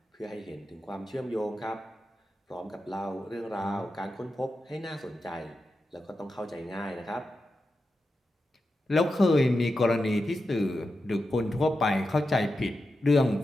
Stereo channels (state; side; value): normal; both; correlation 0.90